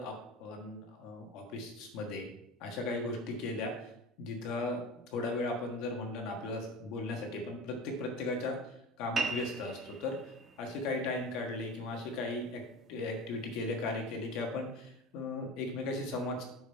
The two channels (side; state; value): both; normal; correlation 0.32